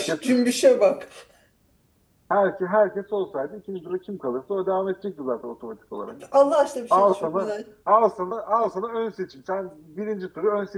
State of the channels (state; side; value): identical; both; correlation 1.00